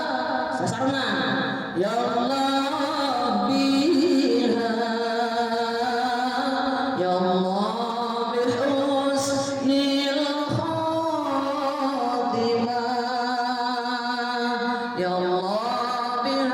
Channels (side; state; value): both; identical; correlation 1.00